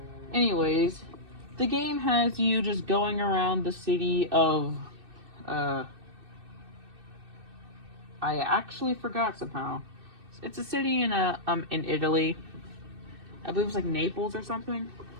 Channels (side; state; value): left; late; 2.6 ms